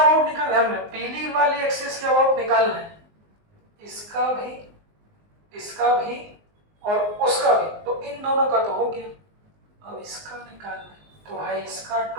निकालना है हमने, पीली वाली एक्सिस के अबाउट निकालना है। इसका भी, इसका भी और उसका भी। तो इन दोनों का तो हो गया, अब इसका निकालना है। तो भाई इसका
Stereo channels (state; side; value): late; left; 19 ms